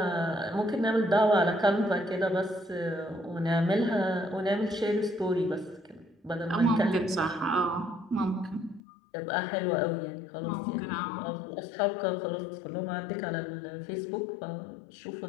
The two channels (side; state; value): right; drops out; at 8.8 s